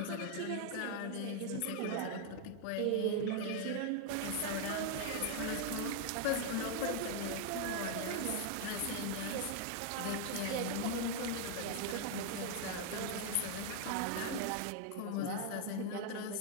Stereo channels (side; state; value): both; different; correlation 0.00